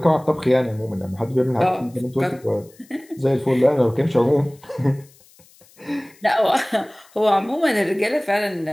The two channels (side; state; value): left; noise; hiss, 28 dB below the sound